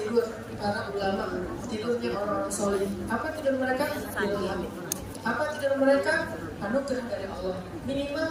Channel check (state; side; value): identical; both; correlation 1.00